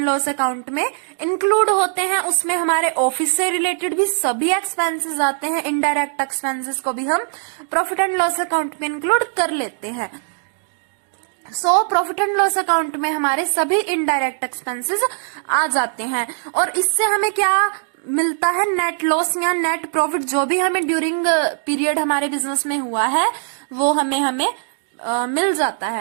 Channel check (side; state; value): left; silent; digital silence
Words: लॉस अकाउंट में इंक्लूड होते हैं। उसमें हमारे ऑफिस से रिलेटेड भी सभी एक्सपेंसेस आते हैं, इनडायरेक्ट एक्सपेंसेस को भी हम प्रॉफिट एंड लॉस अकाउंट में इंक्लूड कर लेते हैं। प्रॉफिट एंड लॉस अकाउंट में हमारे सभी इनडायरेक्ट एक्सपेंसेस आ जाते हैं, और इससे हमें क्या मिलता है? नेट लॉस या नेट प्रॉफिट, जो भी हमें ड्यूरिंग पीरियड हमारे बिजनेस में हुआ है वो हमें मिल जाता